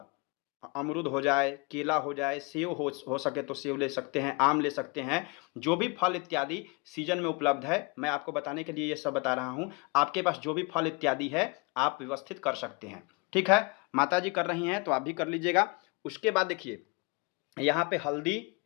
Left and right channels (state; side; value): quieter; right; 30.0 dB